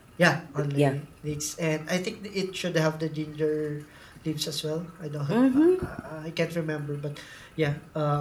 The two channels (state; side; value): identical; both; correlation 1.00